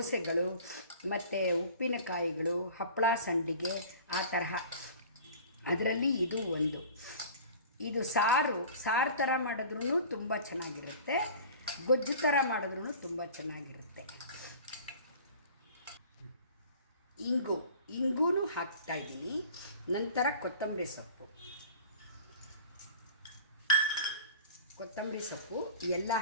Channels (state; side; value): inverted; both; correlation -0.43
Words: ಮತ್ತು ಉಪ್ಪಿನಕಾಯಿಗಳು, ಹಪ್ಪಳ, ಸಂಡಿಗೆ, ಆ ತರಹ. ಅದರಲ್ಲಿ ಇದು ಒಂದು. ಇದು ಸಾರು ಥರ ಮಾಡಿದ್ರೂ ತುಂಬ ಚೆನ್ನಾಗಿರುತ್ತೆ, ಗೊಜ್ಜು ಥರ ಮಾಡಿದ್ರೂ ತುಂಬ ಚೆನ್ನಾಗಿರುತ್ತೆ. ಇಂಗೂ ಹಾಕ್ತಾಯಿದ್ದೀನಿ. ನಂತರ ಕೊತ್ತಂಬರಿ ಸೊಪ್ಪು ಎಲ್ಲ